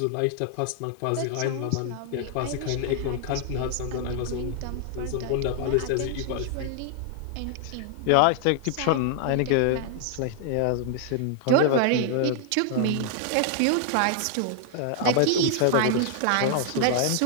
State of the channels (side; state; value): both; different; correlation 0.00